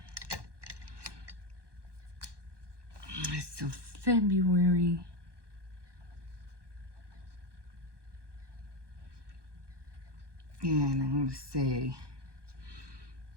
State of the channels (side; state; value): left; late; 1.2 ms